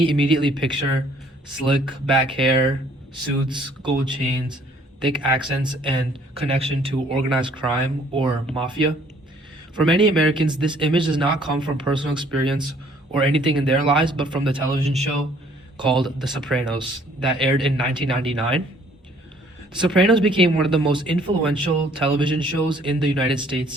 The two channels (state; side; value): normal; both; correlation 0.60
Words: immediately picture slick back hair, suits, gold chains, thick accents, and connection to organized crime or mafia. For many Americans, this image does not come from personal experience or anything in their lives, but from the television show called The Sopranos that aired in 1999. The Sopranos became one of the most influential television shows in the United